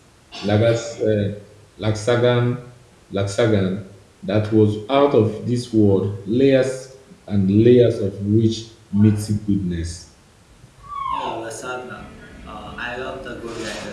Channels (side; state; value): both; identical; correlation 1.00